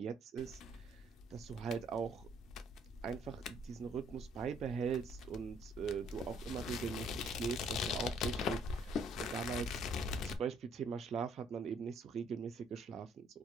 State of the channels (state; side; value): normal; both; correlation 0.63